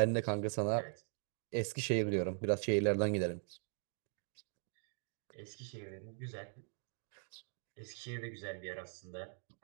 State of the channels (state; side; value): silent; left; 51 dB below the other